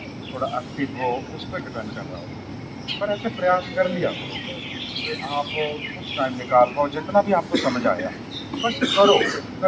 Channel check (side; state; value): both; identical; correlation 1.00